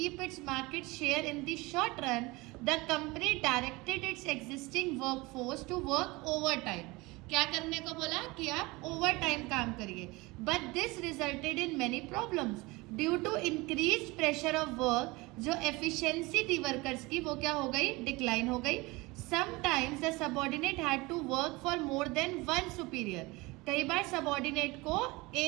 its market share in the short run, the company directed its existing workforce to work over time. क्या करने को बोला कि आप ओवर टाइम काम करिए. But this resulted in many problems due to increase pressure of work. जो एफिशिएंसी थी वर्कर्स की वो क्या हो गई, डिक्लाइन हो गई. Sometimes the subordinate had to work for more than one superior. कई बार सबऑर्डिनेट को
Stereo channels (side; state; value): left; quieter; 23.1 dB